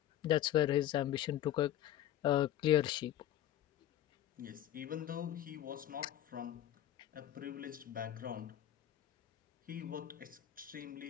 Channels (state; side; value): quieter; right; 12.3 dB